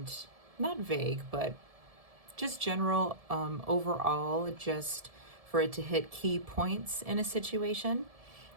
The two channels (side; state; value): left; late; 1.7 ms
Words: not vague, but just general overall, just for it to hit key points in a situation.